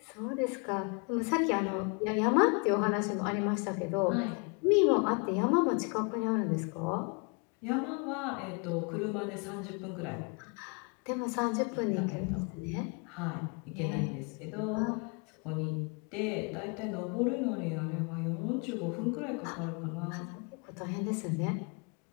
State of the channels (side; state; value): right; quieter; 34.2 dB